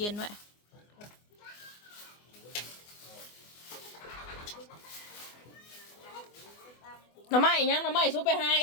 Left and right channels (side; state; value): right; late; 24 ms